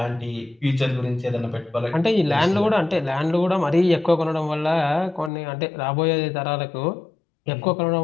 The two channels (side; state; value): right; drops out; at 5.3 s